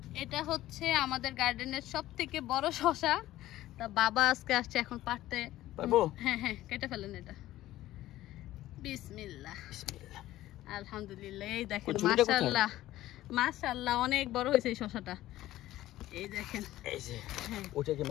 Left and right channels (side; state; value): right; quieter; 15.0 dB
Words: এটা হচ্ছে আমাদের গার্ডেনের সব থেকে বড় শসা। তা বাবা আজকে আসছে এখন পারতে পারবো। হ্যাঁ হ্যাঁ, কেটে ফেলেন এটা। বিসমিল্লাহ বিসমিল্লাহ, আলহামদুলিল্লাহ। এই দেখেন মাশাআল্লাহ মাশাআল্লাহ অনেক বড় হয়েছে এই শসাটা। এই দেখেন, এই যে ওটাকে